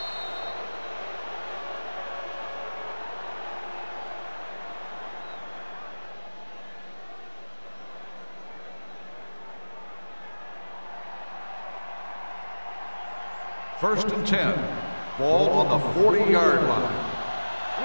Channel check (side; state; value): both; inverted; correlation -1.00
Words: First and 10. Ball on the 40-yard line.